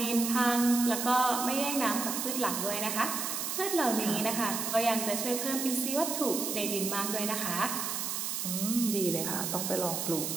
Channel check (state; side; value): noise; right; hiss, 2 dB below the sound